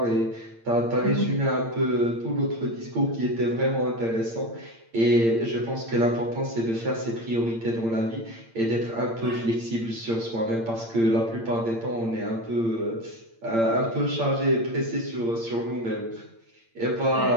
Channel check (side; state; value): left; late; 8.8 ms